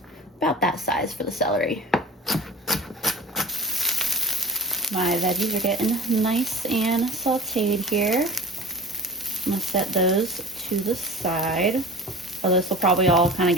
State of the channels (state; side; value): normal; both; correlation 0.35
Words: about that size for the celery. My veggies are getting nice and sauteed here. I'm gonna set those to the side. So this will probably all kind of